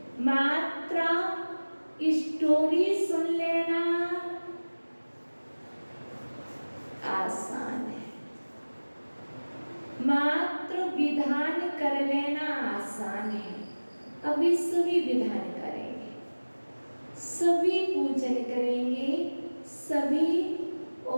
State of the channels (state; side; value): inverted; both; correlation -1.00